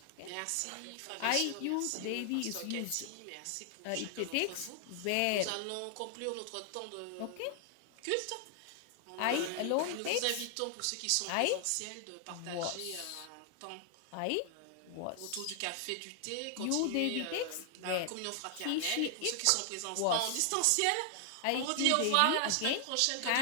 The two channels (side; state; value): both; different; correlation 0.00